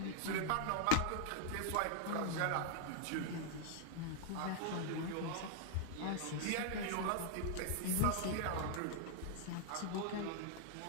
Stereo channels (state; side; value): different; both; correlation 0.00